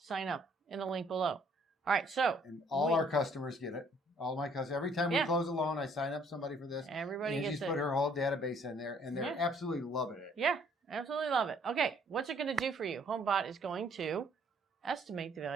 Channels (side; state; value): both; normal; correlation 0.62